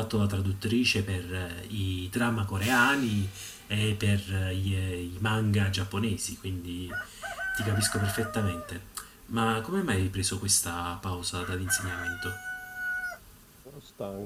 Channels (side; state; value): both; identical; correlation 1.00